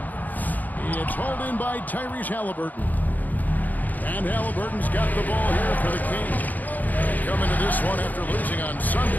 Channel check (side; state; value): right; late; 0.082 ms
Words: It's hauled in by Tyrese Halliburton. And Halliburton's got the ball here for the Kings. Coming to this one after losing on